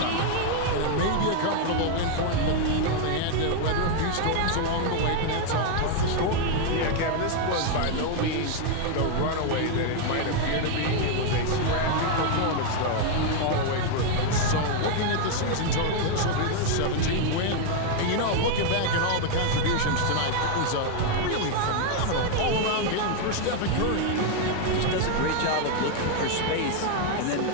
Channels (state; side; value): different; both; correlation 0.00